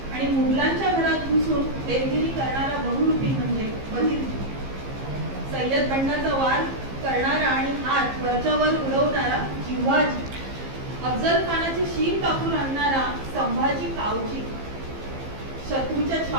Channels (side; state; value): left; late; 15 ms